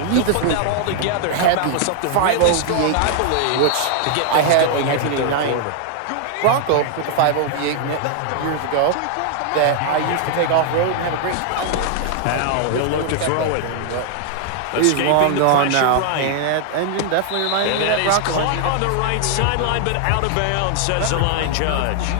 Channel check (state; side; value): different; both; correlation 0.00